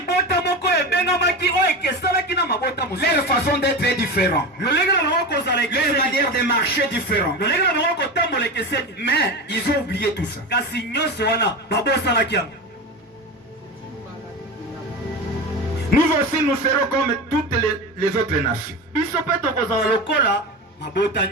façon d'être est différente. Leur manière de marcher est différente. Mais ils ont oublié tout ça. Nous aussi, nous serons comme toutes les autres nations.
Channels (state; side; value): normal; both; correlation 0.24